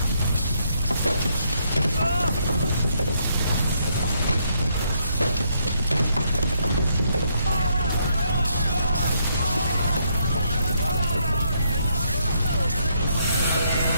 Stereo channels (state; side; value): inverted; both; correlation -0.73